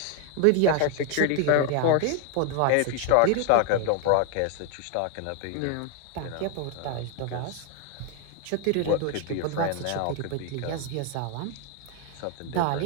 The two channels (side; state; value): both; different; correlation 0.01